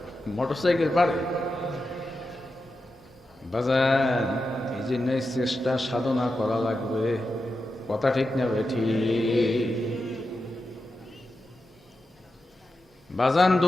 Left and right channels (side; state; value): both; normal; correlation 0.90